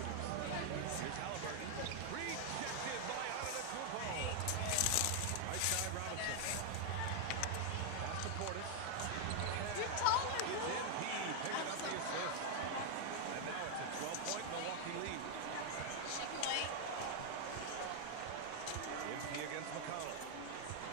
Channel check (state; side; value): different; both; correlation 0.00